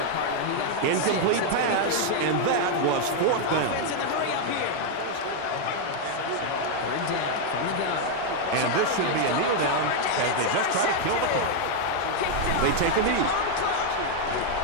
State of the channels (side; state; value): both; different; correlation 0.00